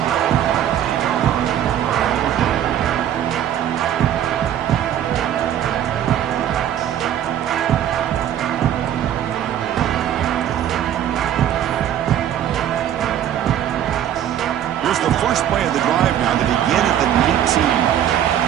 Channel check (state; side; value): quieter; left; 10.6 dB